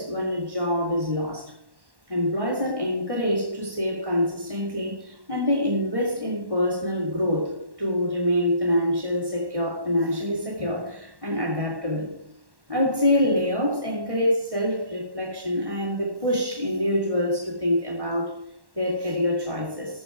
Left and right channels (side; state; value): left; late; 1.1 ms